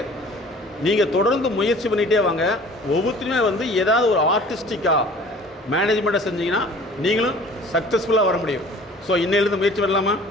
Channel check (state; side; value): normal; both; correlation 0.48